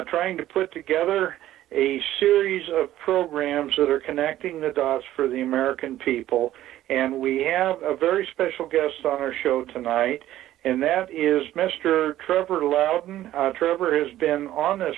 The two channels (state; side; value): quieter; left; 13.7 dB